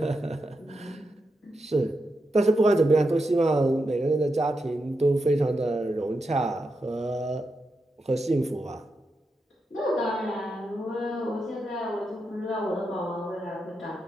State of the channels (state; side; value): normal; both; correlation 0.86